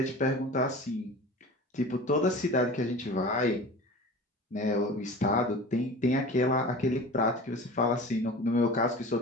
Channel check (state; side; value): normal; both; correlation 0.37